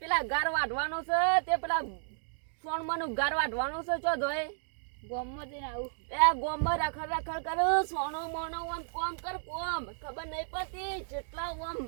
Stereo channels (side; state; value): left; silent; digital silence